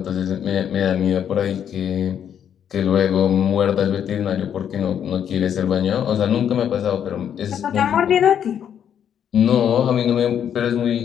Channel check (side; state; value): right; quieter; 9.0 dB